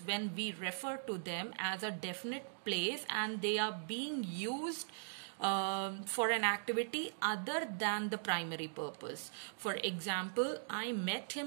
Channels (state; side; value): silent; left; digital silence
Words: when we refer to them as a definite place and they are being used for an activity other than the primary purpose. For example, I met